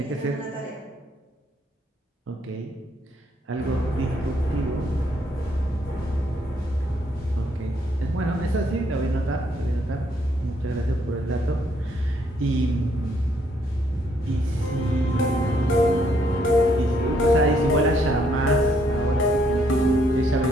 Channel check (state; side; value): normal; both; correlation 0.71